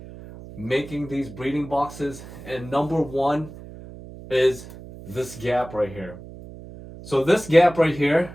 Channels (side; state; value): right; noise; hum, 15 dB below the sound